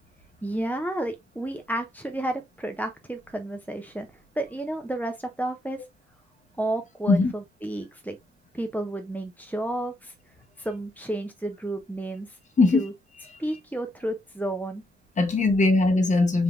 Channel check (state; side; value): normal; both; correlation 0.78